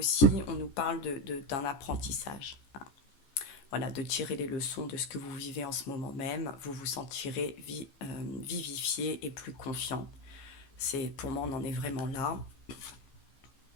on nous parle d'un apprentissage. Hein. Voilà, de tirer les leçons de ce que vous vivez en ce moment même. Vous vous sentirez vivifié et plus confiant. Pour moi, on en est vraiment là.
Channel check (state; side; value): late; right; 14 ms